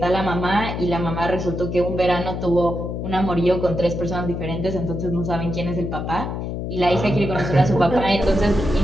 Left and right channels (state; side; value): noise; left; hum, 4 dB below the sound